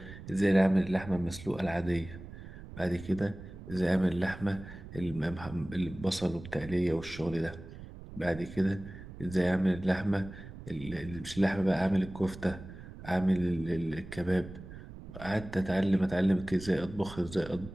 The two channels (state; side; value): noise; right; rumble, 14 dB below the sound